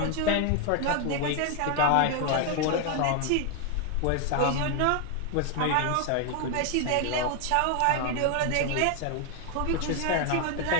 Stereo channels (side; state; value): both; different; correlation 0.01